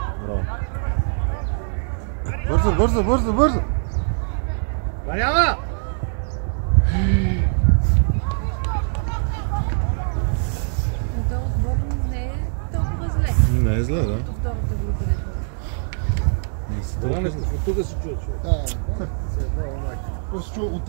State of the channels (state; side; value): silent; left; digital silence